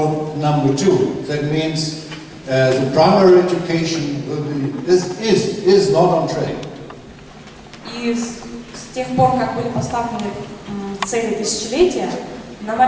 number 2. That means the primary education is not on track. И с тех пор, как были поставлены цели тысячелетия, на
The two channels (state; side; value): identical; both; correlation 1.00